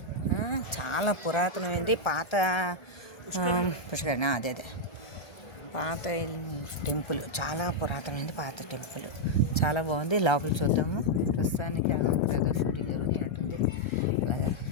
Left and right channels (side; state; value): right; late; 1.3 ms